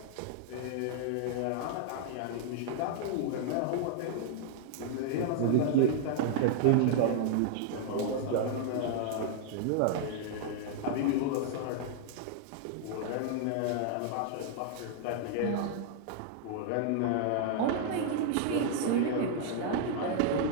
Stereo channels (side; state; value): both; different; correlation -0.01